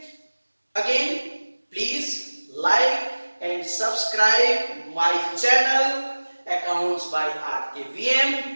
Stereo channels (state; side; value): inverted; both; correlation -1.00